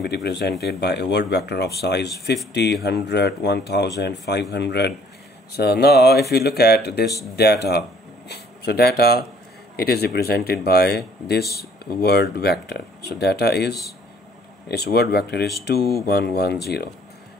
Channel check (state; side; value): normal; both; correlation 0.59